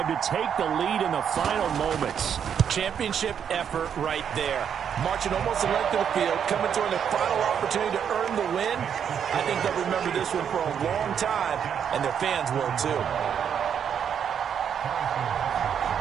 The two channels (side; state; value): left; quieter; 8.1 dB